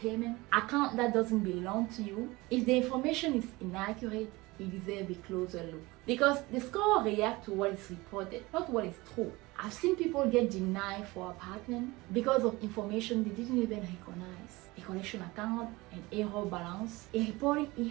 account that doesn't belong to you. If the information is inaccurate, you deserve a closer look. Because the score reacts to what is reported, not what is true. I've seen people get denied for apartment because of information they didn't even recognize. A collection account, an error balance, a reporting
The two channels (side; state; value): left; quieter; 21.9 dB